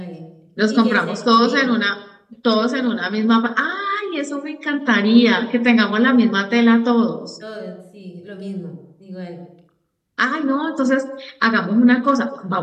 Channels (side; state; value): both; identical; correlation 1.00